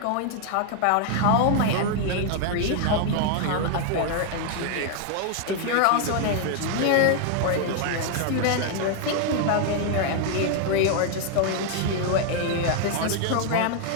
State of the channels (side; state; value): both; different; correlation 0.00